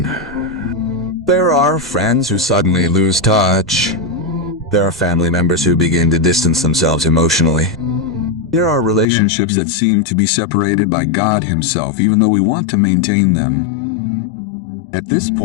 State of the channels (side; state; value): right; drops out; at 9.1 s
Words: There are friends who suddenly lose touch. There are family members who begin to distance themselves emotionally. There are relationships that seem to be separated by God Himself, even though we want to maintain them. At this